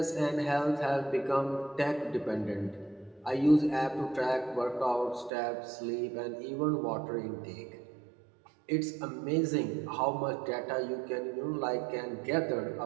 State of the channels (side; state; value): left; drops out; at 5.3 s